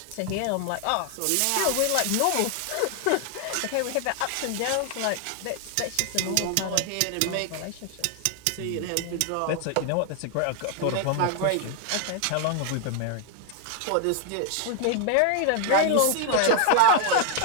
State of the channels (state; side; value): different; both; correlation 0.00